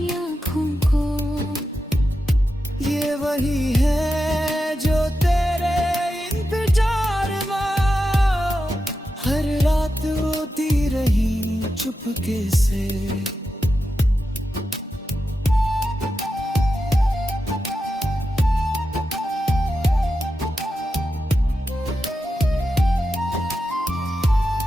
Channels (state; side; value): normal; both; correlation 0.89